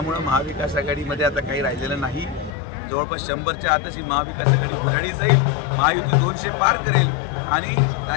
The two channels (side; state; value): right; drops out; at 2.5 s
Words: महाविकास आघाडीमध्ये आता काही राहिलेलं नाही. जवळपास 100च्या आतच ही महाविकास आघाडी गुढाळी जाईल, महायुती 200 पार करेल आणि